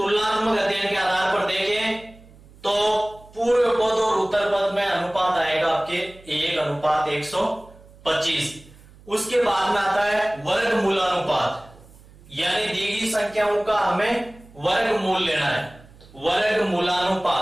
अध्ययन के आधार पर देखें तो पूर्व पद और उत्तर पद में अनुपात आएगा आपके 1:125। उसके बाद में आता है वर्गमूलानुपात, यानी दी गई संख्याओं का हमें वर्गमूल लेना है।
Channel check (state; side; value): noise; right; hum, 24 dB below the sound